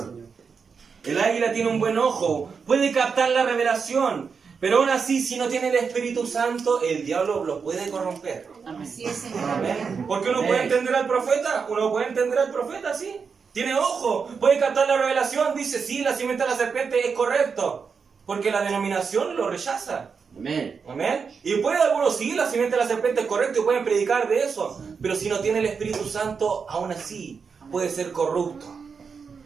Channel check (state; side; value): quieter; left; 5.7 dB